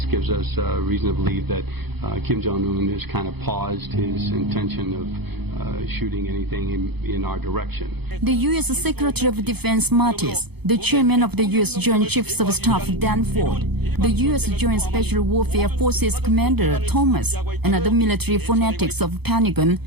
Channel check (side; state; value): left; late; 0.98 ms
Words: gives us reason to believe that Kim Jong-un has kind of paused his intention of shooting anything in our direction. The U.S. Secretary of Defense Mattis, the chairman of the U.S. Joint Chiefs of Staff Danford, the U.S. Joint Special Warfare Forces Commander Thomas, and other military fanatics of Pentagon